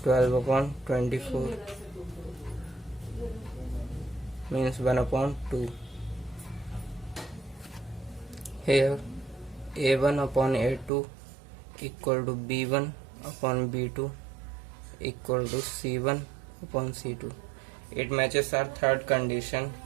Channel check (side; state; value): left; drops out; at 10.9 s